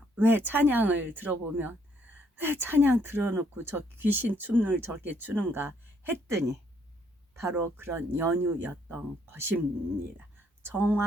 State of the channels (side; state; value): both; normal; correlation 0.69